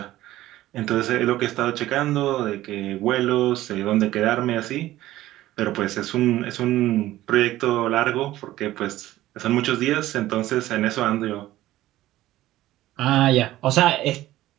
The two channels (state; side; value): quieter; left; 15.4 dB